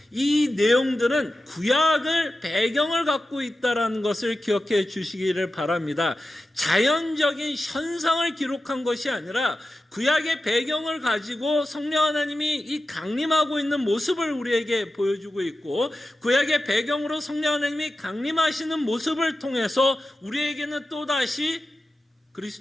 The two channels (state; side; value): normal; both; correlation 0.92